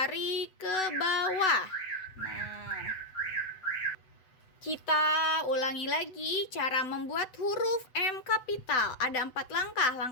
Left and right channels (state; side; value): late; right; 7.9 ms